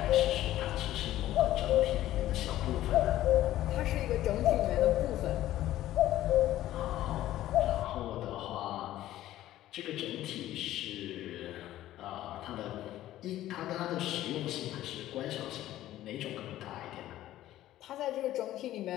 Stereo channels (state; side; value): quieter; right; 14.1 dB